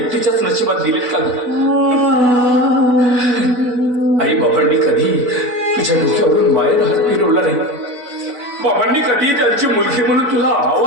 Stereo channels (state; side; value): late; left; 4.0 ms